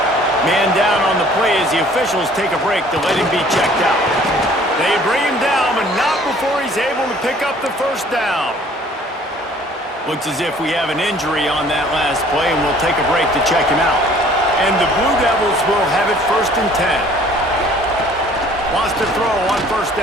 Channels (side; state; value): both; normal; correlation 0.54